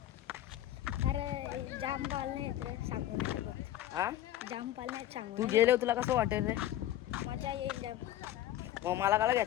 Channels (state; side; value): quieter; right; 13.0 dB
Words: अरे जाम पाळणे आहेत रे, सांगू नाही शकत. हा, जाम पाळणे आहेत, सांगू तू नाही गेले तुला कसं वाटेल रे? शकत. मजा येईल जाम. मग मला काला